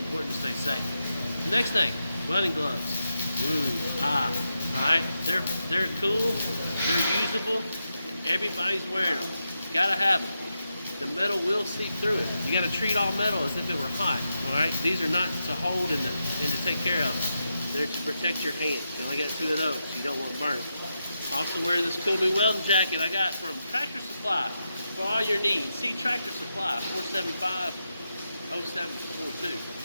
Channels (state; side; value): inverted; both; correlation -0.87